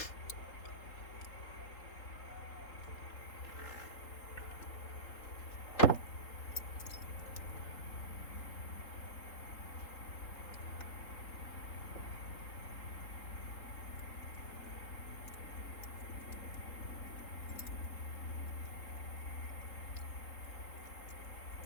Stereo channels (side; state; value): right; late; 3.7 ms